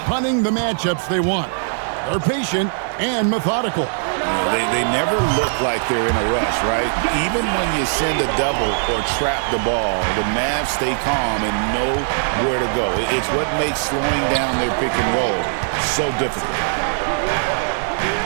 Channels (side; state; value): left; silent; digital silence